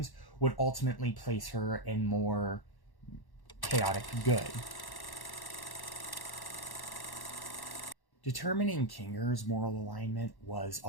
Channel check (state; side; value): late; right; 1.1 ms